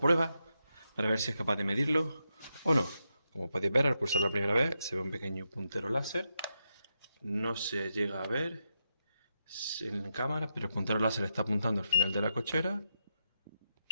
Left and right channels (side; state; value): both; inverted; correlation -0.85